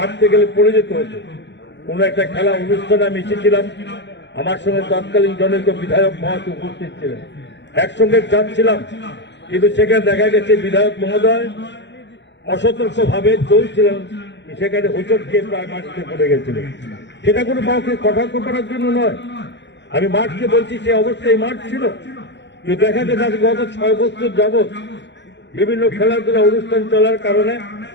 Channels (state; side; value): late; right; 0.52 ms